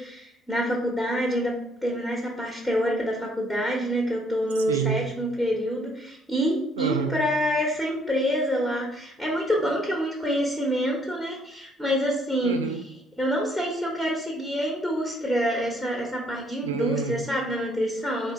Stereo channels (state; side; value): normal; both; correlation 0.66